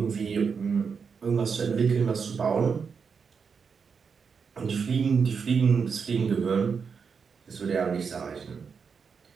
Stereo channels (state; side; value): quieter; left; 5.9 dB